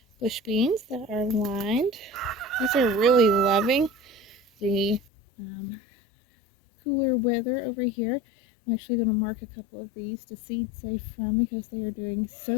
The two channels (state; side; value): drops out; right; at 5.0 s